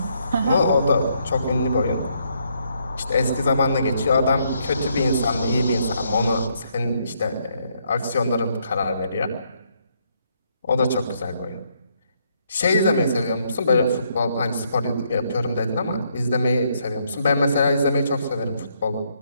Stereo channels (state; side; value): inverted; both; correlation -0.73